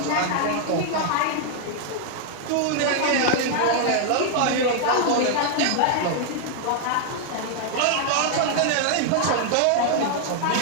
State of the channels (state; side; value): different; both; correlation 0.00